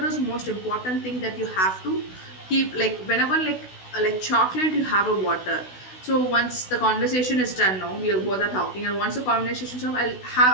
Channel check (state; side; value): late; right; 16 ms